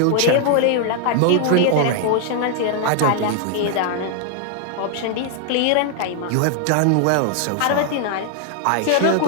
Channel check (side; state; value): both; different; correlation 0.00